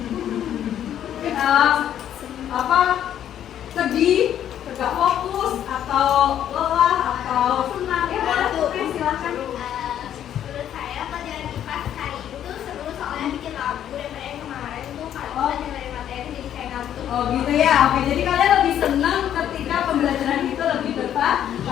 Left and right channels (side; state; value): right; quieter; 10.5 dB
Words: Sedih, gak fokus, atau lelah, atau senang? Ya, boleh tuh, silakan. Menurut saya pelajaran IPA hari itu seru soalnya bikin lagu daripada yang kemarin tuh kalau kita dengerin materi jadi kayak ngantuk. Oh gitu ya, oke. Jadi kalian lebih senang ketika pembelajaran itu lebih